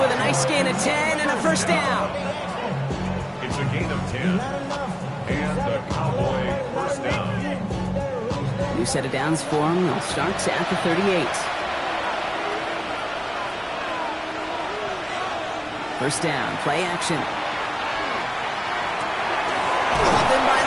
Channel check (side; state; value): both; identical; correlation 1.00